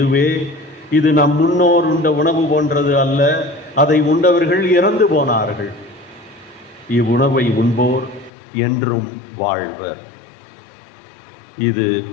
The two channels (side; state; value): right; drops out; at 8.3 s